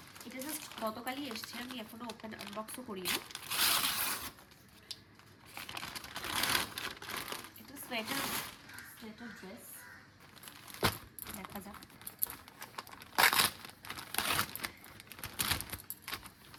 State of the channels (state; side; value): identical; both; correlation 1.00